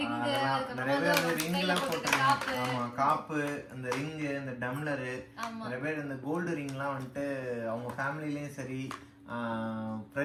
ரிங், நிறைய பேர் ரிங்லாம் போட்டுருக்காங்க. ஆமா, காப்பு, அந்த ரிங், இந்த டம்ளர், நிறைய பேர் இந்த கோல்டு ரிங்லாம் வந்துட்டு அவங்க ஃபேமிலிலயும் சரி,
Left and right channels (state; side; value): identical; both; correlation 1.00